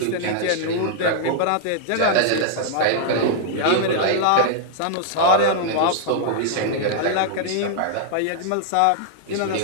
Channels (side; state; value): both; different; correlation -0.01